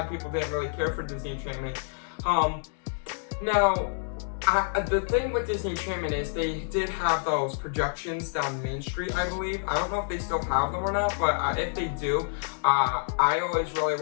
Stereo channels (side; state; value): right; silent; digital silence